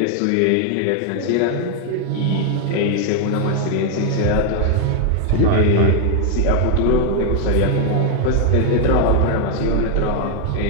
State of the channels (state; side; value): different; both; correlation 0.01